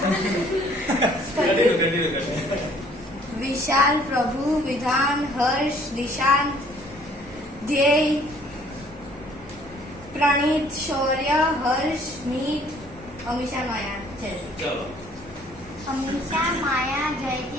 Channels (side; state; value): both; normal; correlation 0.58